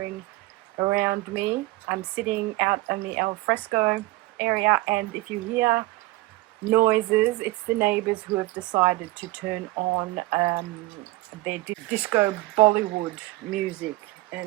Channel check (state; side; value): quieter; left; 20.0 dB